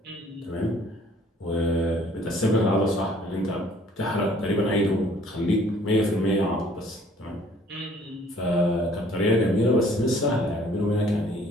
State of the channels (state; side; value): normal; both; correlation 0.57